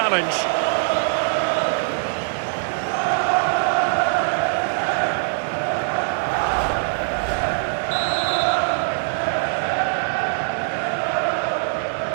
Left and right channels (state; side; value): silent; left; digital silence